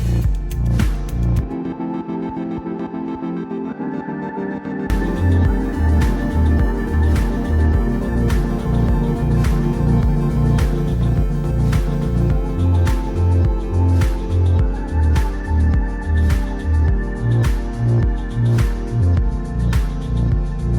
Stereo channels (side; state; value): both; identical; correlation 1.00